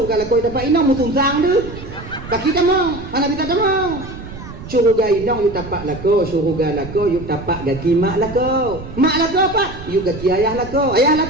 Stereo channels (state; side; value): noise; right; rumble, 13 dB below the sound